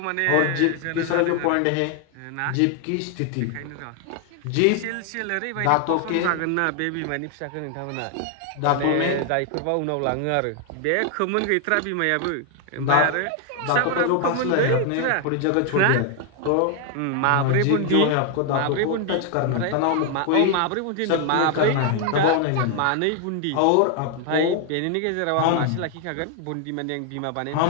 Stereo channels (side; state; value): both; different; correlation 0.00